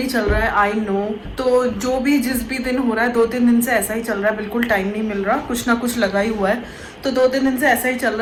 चल रहा है, आई नो। तो जो भी जिस भी दिन हो रहा है, 2-3 दिन से ऐसा ही चल रहा है, बिल्कुल टाइम नहीं मिल रहा, कुछ ना कुछ लगा ही हुआ है। तो 2-3 दिन से ऐसा ही चल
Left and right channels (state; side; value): identical; both; correlation 1.00